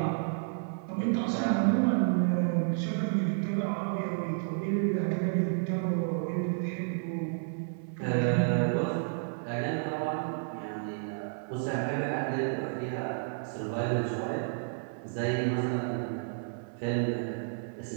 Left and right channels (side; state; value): left; silent; 57 dB below the other